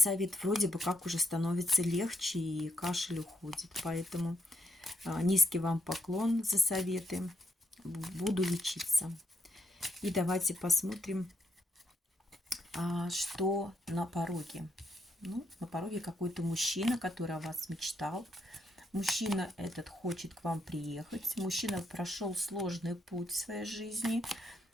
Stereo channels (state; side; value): normal; both; correlation 0.78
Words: Вроде бы как уже становится легче и кашель уходит. Поэтому низкий вам поклон за советы. Буду лечиться. И давайте посмотрим, что на пороге. Ну, на пороге какой-то мужчина, который о вас мечтал. Мужчина этот хочет к вам приехать. Мужчина прошел сложный путь в своей жизни